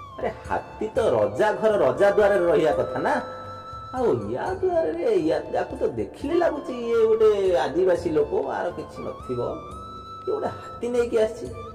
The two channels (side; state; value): both; identical; correlation 1.00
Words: अरे हाथी तो रजा घर रजा द्वार रहिया कथा ना। आउ या द्वार रे या जाकू तो देखिले लागुची ये गोटे आदिवासी लोक आर किछि नथिबो। ये गोटे हाथी नै कि आसी